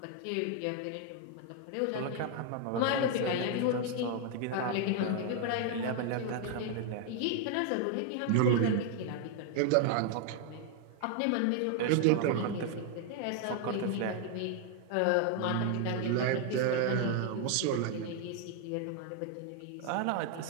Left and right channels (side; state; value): both; different; correlation 0.00